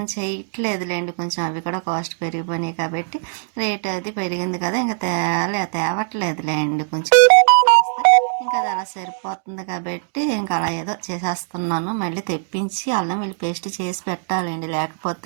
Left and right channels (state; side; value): silent; left; digital silence